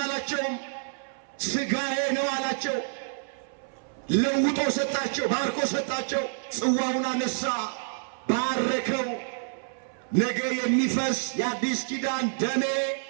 ሥጋዬ ነው አላቸው። ለውጦ ሰጣቸው፣ ባርኮ ሰጣቸው። ጽዋውን አነሳ፣ ባረከው። ነገ የሚፈስ የአዲስ ኪዳን ደሜ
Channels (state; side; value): silent; left; 59 dB below the other